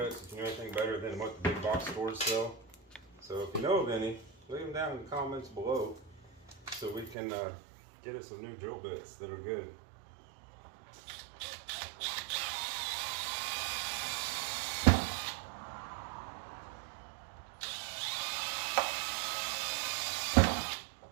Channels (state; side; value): drops out; left; at 7.2 s